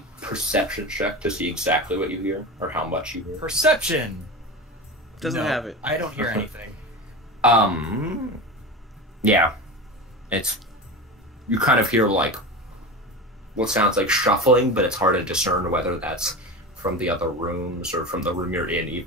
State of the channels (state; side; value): normal; both; correlation 0.26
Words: perception check to see exactly what you hear or how much you hear. Perception. Doesn't have it. I don't hear anything. Yeah. It's you kind of hear like what sounds like shuffling, but it's hard to discern whether that's from the other rooms or from the room you're in